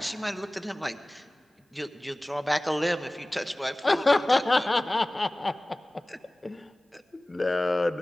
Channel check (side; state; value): both; normal; correlation 0.98